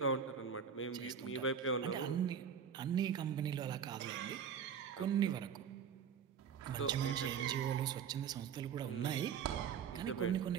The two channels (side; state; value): left; quieter; 7.4 dB